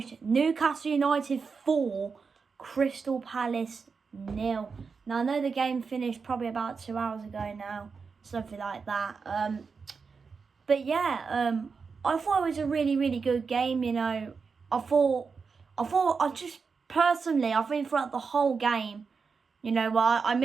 Newcastle United 4, Crystal Palace 0. Now, I know the game finished probably about 2 hours ago now, something like that. But yeah, I thought it was a really, really good game. You know, I think throughout the whole game, you know, well, I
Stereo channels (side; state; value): left; quieter; 5.2 dB